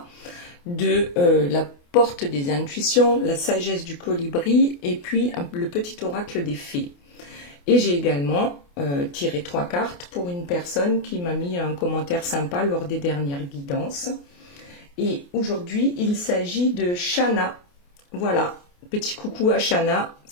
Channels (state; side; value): late; right; 28 ms